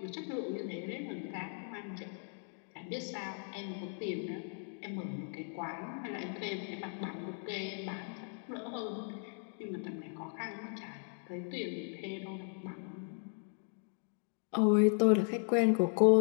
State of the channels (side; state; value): right; silent; 53 dB below the other